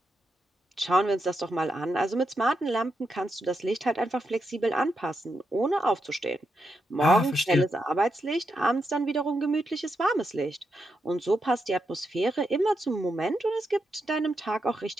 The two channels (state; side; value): normal; both; correlation 0.84